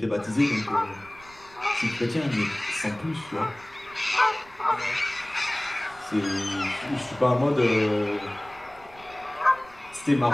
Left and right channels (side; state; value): right; noise; rumble, 24 dB below the sound